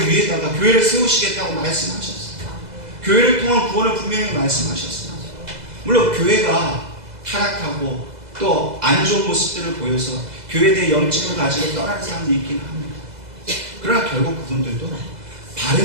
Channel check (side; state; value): left; late; 2.0 ms